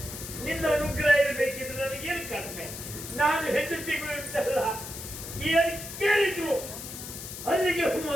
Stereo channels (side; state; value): left; noise; hiss, 10 dB below the sound